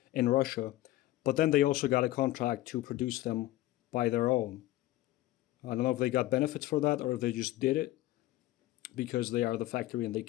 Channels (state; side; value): quieter; right; 16.3 dB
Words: in Russia, but then they also got a contract to produce them by their own. I don't know if they got benefits for that or if they just did it because they are the factory and they